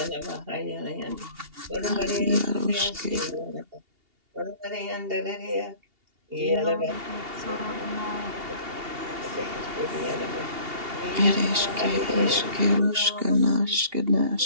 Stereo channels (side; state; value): left; late; 2.8 ms